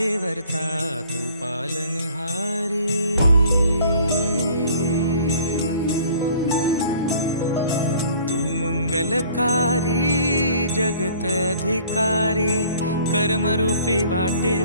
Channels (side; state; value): both; inverted; correlation -0.53